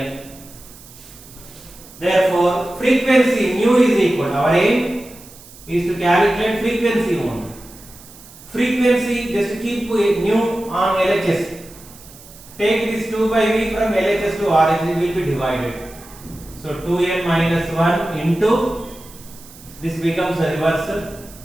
Therefore, frequency nu is equal. Our aim is to calculate frequency only. Frequency, just keep nu on LHS. Take this 2 by V from LHS to RHS, it will be divided. So 2n minus 1 into, this becomes a reversal.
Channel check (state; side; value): noise; right; hiss, 20 dB below the sound